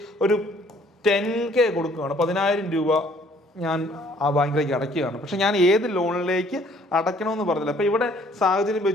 ഒരു 10K കൊടുക്കുകയാണ്, 10,000 രൂപ ഞാൻ ആ ബാങ്കിലേക്ക് അടയ്ക്കുകയാണ്. പക്ഷെ ഞാൻ ഏത് ലോണിലേക്ക് അടയ്ക്കണമെന്ന് പറഞ്ഞില്ല. അപ്പം ഇവിടെ സാഹചര്യം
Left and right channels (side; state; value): both; normal; correlation 0.60